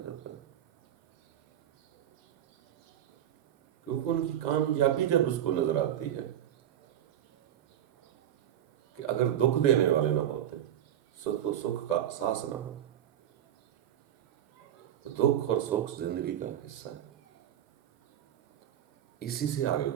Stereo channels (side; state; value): left; quieter; 11.0 dB